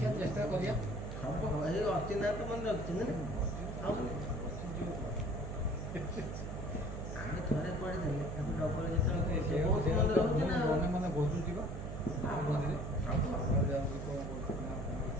ଚେଷ୍ଟା କରିବା। ହବ। ଏଇ ଅର୍ଚି ନାଁ ତ ମନେ ରଖିଛନ୍ତି ନା। ଆମେ ଥରେ ପଢ଼ିଦେଲେ ତାକୁ ଡବଲ ଯେତେବେଳେ ବହୁତ ମନେ ରହୁଛି ନା। ମନେ ମନେ ଘୋଷୁଛି ବା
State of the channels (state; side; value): noise; right; hum, 6 dB below the sound